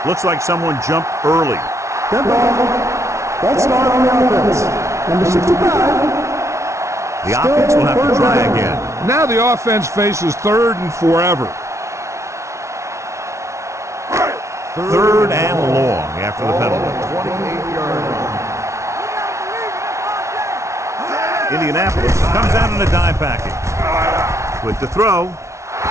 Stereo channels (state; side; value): late; left; 0.14 ms